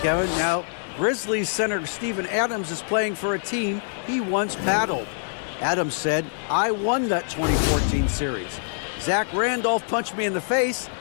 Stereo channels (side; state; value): right; silent; digital silence